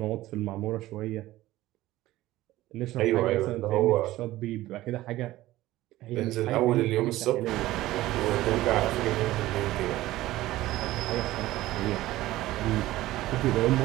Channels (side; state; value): left; quieter; 16.4 dB